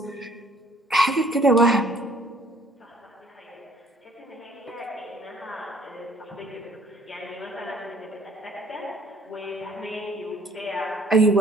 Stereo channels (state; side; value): normal; both; correlation 0.59